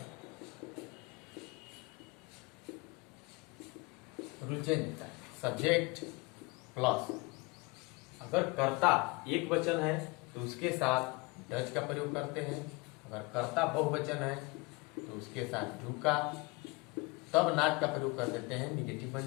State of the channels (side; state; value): right; quieter; 26.1 dB